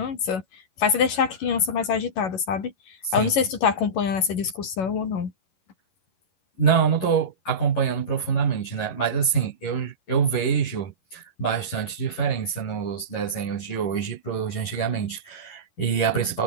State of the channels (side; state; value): right; late; 11 ms